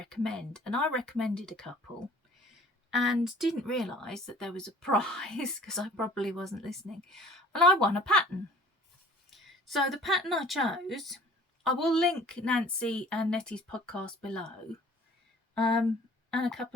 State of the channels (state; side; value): normal; both; correlation 0.50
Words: And I recommended a couple and didn't realise that there was a prize because I probably wasn't listening, and I won a pattern. So the pattern I chose, I will link Nancy and Nettie's podcast below, and a